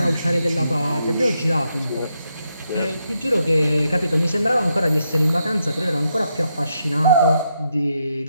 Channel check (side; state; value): both; inverted; correlation -0.81